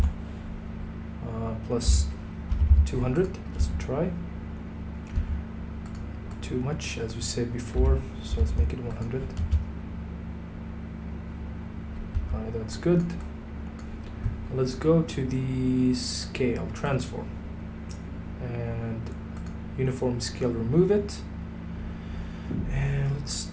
plus 200. Let's try. Too much, as we said before, so let's make it 100. Alright, that's good. Let's go to the scale, transform, and uniform scale, remove it, and let's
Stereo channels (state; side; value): identical; both; correlation 1.00